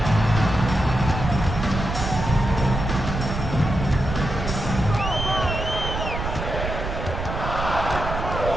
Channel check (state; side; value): noise; right; rumble, 5 dB below the sound